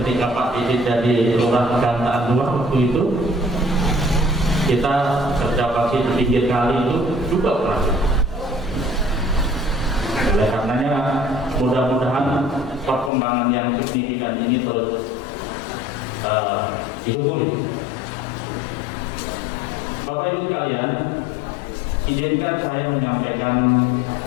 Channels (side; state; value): right; drops out; at 13.1 s